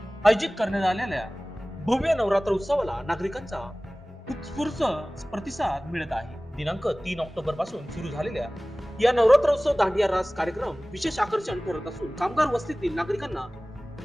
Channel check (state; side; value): normal; both; correlation 0.98